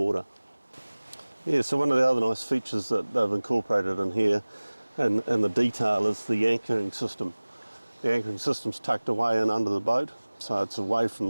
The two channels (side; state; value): both; inverted; correlation -1.00